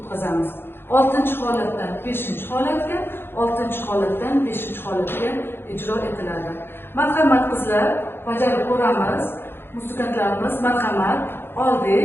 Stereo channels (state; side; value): late; right; 0.11 ms